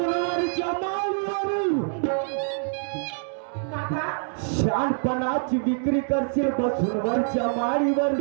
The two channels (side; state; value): left; silent; digital silence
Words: माळीवर काका शहाणपणाची विक्री करशील बसवरच्या माळीवर